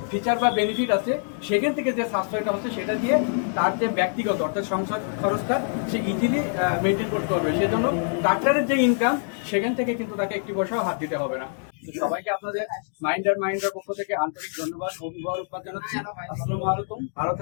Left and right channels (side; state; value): right; silent; digital silence